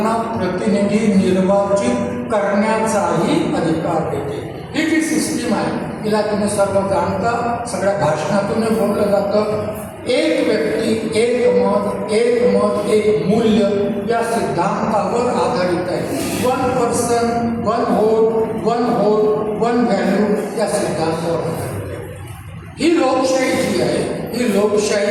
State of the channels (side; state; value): both; identical; correlation 1.00